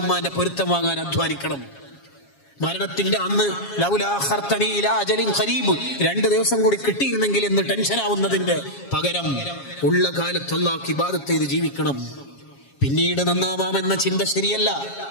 ഉമ്മാന്റെ പൊരുത്തം വാങ്ങാൻ അധ്വാനിക്കണം. മരണത്തിന്റെ അന്ന് ലൗലാ അഖർതനി ഇലാ അജലിൻ ഖരീബ്, 2 ദിവസം കൂടി കിട്ടിയിരുന്നെങ്കിൽ എന്ന് ടെൻഷൻ ആവുന്നതിന്റെ പകരം ഉള്ള കാലത്ത് അല്ലാഹുവിനെ ഇബാദത്ത് ചെയ്ത് ജീവിക്കണം. പിന്നീട് നന്നാവാമെന്ന ചിന്ത ശരിയല്ല.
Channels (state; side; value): late; right; 7.3 ms